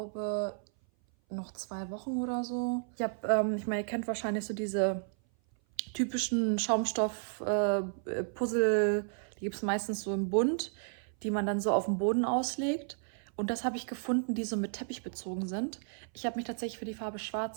noch 2 Wochen oder so. Ich meine, ihr kennt wahrscheinlich so diese typischen Schaumstoff-Puzzle, die gibt es meistens so im Bund, die man dann so auf dem Boden auslegt. Und das habe ich gefunden, die so mit Teppich bezogen sind. Ich habe mich tatsächlich für die Farbe Schwarz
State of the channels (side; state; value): left; silent; 56 dB below the other